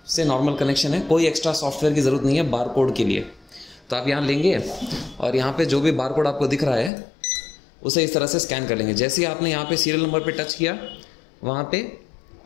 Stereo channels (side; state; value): right; drops out; at 6.9 s